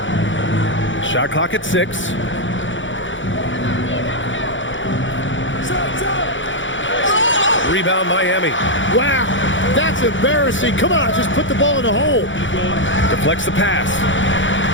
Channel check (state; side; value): late; right; 0.56 ms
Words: Shot clock at 6. Rebound Miami. Wow, that's embarrassing. Come on, just put the ball in the hole. Deflects the pass.